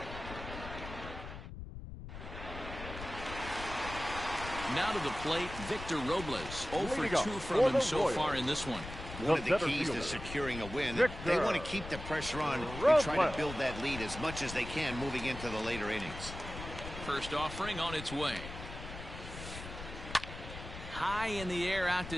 Now to the plate, Victor Robles. 0 for 2 from him so far in this one. One of the keys to securing a win, they want to keep the pressure on and try to build that lead as much as they can moving into the later innings. First offering on its way. High in the air out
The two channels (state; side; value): noise; left; rumble, 10 dB below the sound